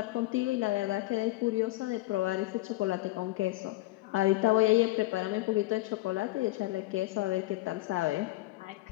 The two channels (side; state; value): right; quieter; 18.9 dB